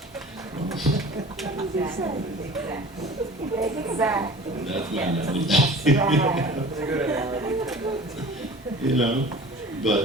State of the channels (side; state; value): both; normal; correlation 0.42